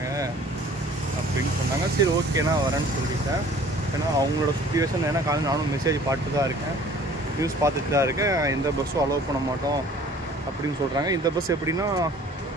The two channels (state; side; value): normal; both; correlation 0.51